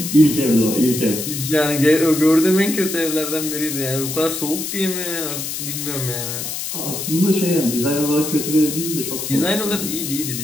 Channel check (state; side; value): noise; left; hiss, 5 dB below the sound